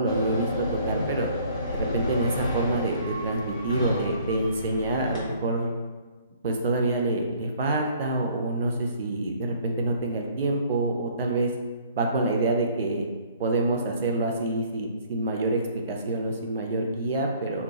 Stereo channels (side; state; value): both; inverted; correlation -0.57